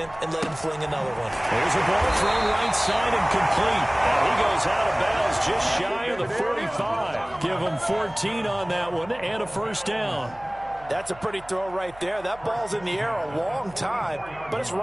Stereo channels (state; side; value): noise; right; hum, 21 dB below the sound